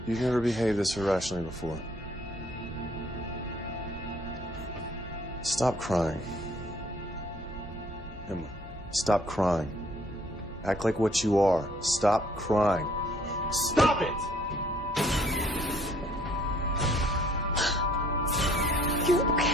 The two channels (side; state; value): both; normal; correlation 0.61